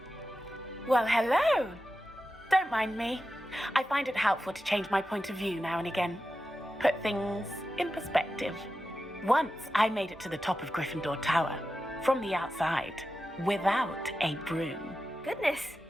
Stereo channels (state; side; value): normal; both; correlation 0.92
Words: Well, hello. Don't mind me. I find it helpful to change my point of view now and again. Put things in perspective. Once I made it to the top of Gryffindor Tower, from the outside, without a broom. Goodness.